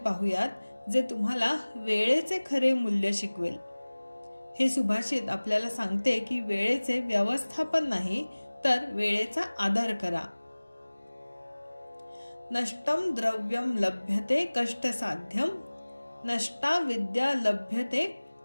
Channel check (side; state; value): both; inverted; correlation -1.00